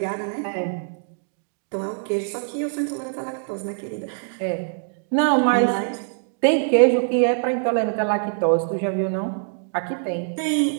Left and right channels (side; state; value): left; silent; digital silence